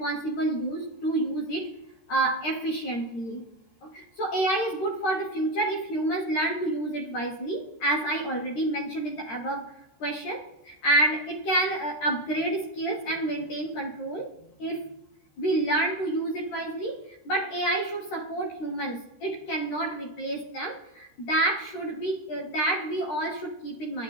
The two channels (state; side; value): late; right; 13 ms